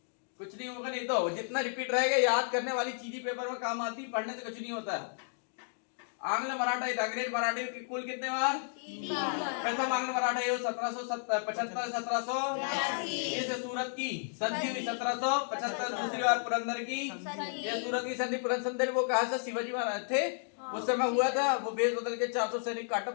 कुछ नहीं होगा। नहीं तो जितना रिपीट रहेगा याद करने वाली चीजें पेपर में काम आती, पढ़ने से कुछ नहीं होता। आंग्ल मराठा अंग्रेज मराठी के कुल कितने बार? 3 बार। प्रथम आंग्ल मराठा 1775 1700 ये सूरत की संधि हुई 1775। दूसरी बार पुरंदर की, ये सूरत की संधि पुरंदर वो कहा था शिवाजी महाराज थे उस समय हुआ था। वो बेस बदल के 400 सैनिक काटप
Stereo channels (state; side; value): silent; right; digital silence